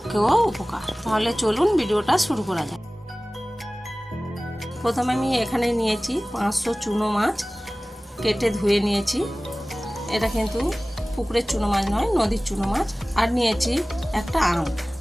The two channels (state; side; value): normal; both; correlation 0.98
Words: উপকার। তাহলে চলুন ভিডিওটা শুরু করা যায়। প্রথমে আমি এখানে নিয়েছি 500 চুনো মাছ, কেটে ধুয়ে নিয়েছি। এটা কিন্তু পুকুরের চুনো মাছ নয়, নদীর চুনো মাছ। আর নিয়েছি একটা